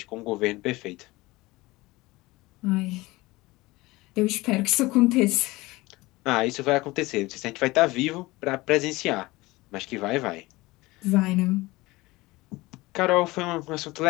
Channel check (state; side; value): quieter; right; 20.8 dB